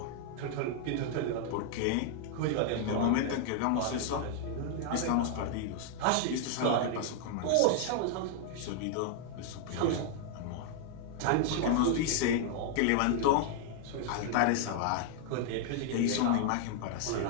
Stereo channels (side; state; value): both; different; correlation 0.00